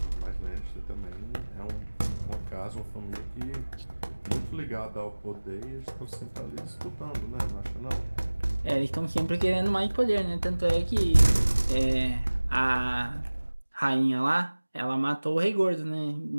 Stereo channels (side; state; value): both; inverted; correlation -1.00